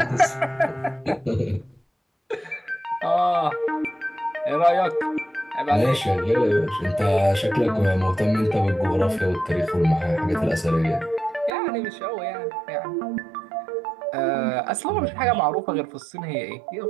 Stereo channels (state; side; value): drops out; left; at 11.5 s